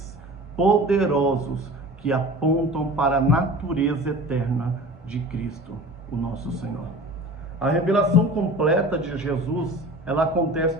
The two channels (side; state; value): both; normal; correlation 0.39